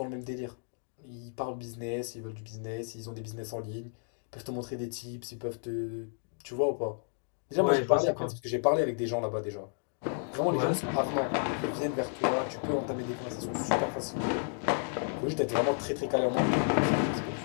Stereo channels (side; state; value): right; silent; digital silence